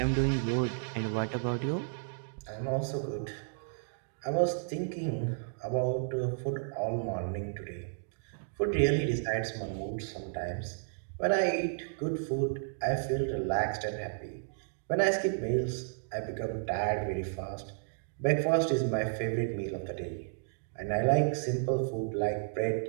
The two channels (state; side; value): silent; left; digital silence